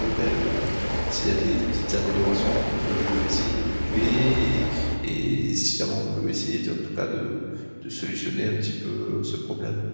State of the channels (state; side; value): inverted; both; correlation -1.00